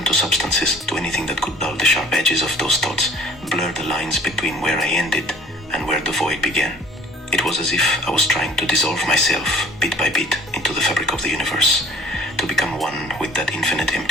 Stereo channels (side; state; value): both; normal; correlation 0.53